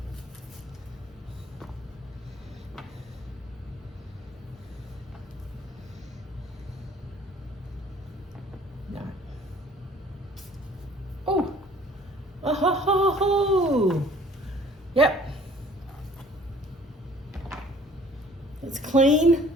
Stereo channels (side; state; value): both; normal; correlation 0.54